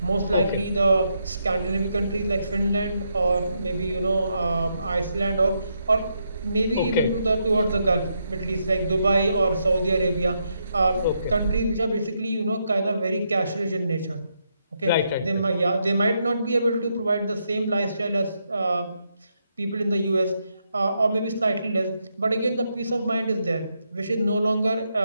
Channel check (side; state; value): both; inverted; correlation -0.80